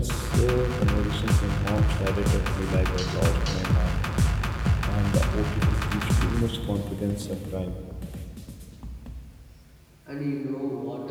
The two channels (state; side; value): identical; both; correlation 1.00